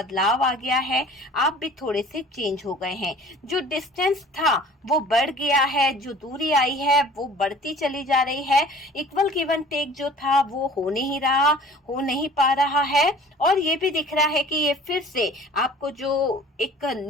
आ गया है, आप भी थोड़े से चेंज हो गए हैं। जो डिस्टेंस था वो बढ़ गया है, जो दूरी आई है वो बढ़ती चली जा रही है। इक्वल गिव एंड टेक जो था वो हो नहीं रहा, हो नहीं पा रहा है। और ये भी दिख रहा है कि ये फिर से आपको जो एक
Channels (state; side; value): normal; both; correlation 0.47